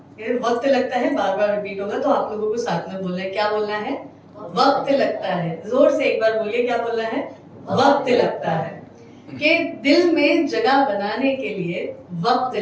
ये वक्त लगता है बार बार रिपीट होगा, तो आप लोगों को साथ में बोलना है. क्या बोलना है? वक्त लगता है. जोर से एक बार बोलिए. क्या बोलना है? वक्त लगता है. कि दिल में जगह बनाने के लिए वक्त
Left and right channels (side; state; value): both; identical; correlation 1.00